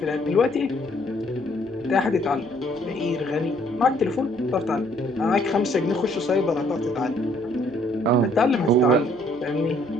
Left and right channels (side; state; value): right; noise; hum, 24 dB below the sound